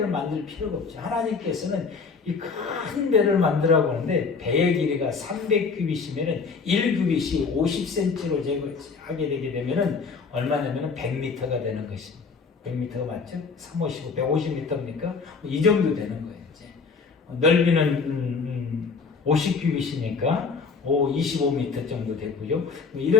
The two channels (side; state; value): right; quieter; 5.0 dB